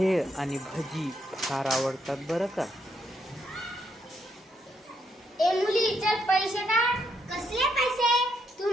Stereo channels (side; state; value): both; normal; correlation 0.77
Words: आणि भजी फार आवडतात बरं का. ए मुली, चल पैसे काढ. कसले पैसे? तू